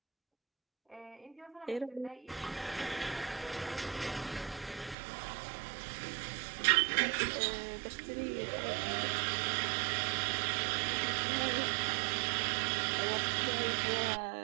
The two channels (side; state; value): left; drops out; at 5.0 s